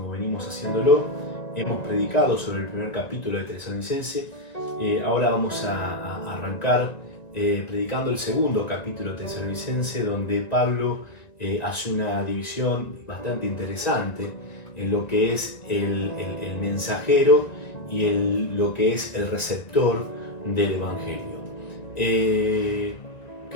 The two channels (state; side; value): late; right; 1.9 ms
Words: venimos haciéndolo. Hemos predicado sobre el primer capítulo de Tesalonicense. Ahora vamos a arrancar predicando el segundo capítulo de Tesalonicense, donde Pablo hace una división bastante interesante en lo que es el mensajero y lo que es el receptor del Evangelio.